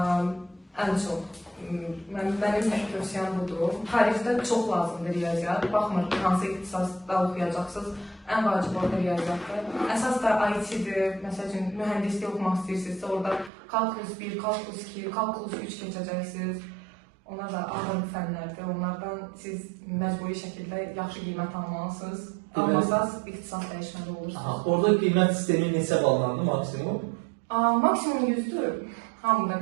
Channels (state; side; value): drops out; left; at 13.5 s